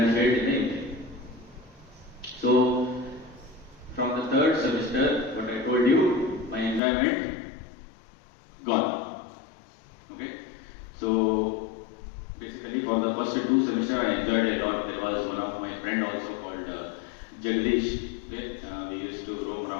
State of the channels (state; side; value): drops out; right; at 6.8 s